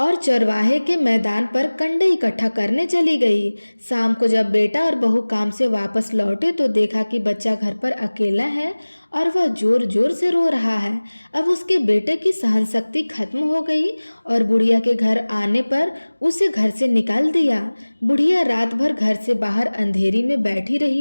चरवाहे के मैदान पर कंडे इकट्ठा करने चली गई। शाम को जब बेटा और बहू काम से वापस लौटे तो देखा कि बच्चा घर पर अकेला है और वह जोर जोर से रो रहा है। अब उसके बेटे की सहन शक्ति खत्म हो गई और बुढ़िया के घर आने पर उसे घर से निकाल दिया। बुढ़िया रात भर घर से बाहर अंधेरी में बैठी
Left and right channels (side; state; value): both; inverted; correlation -1.00